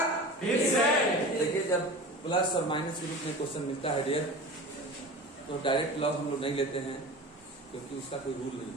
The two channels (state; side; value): normal; both; correlation 0.34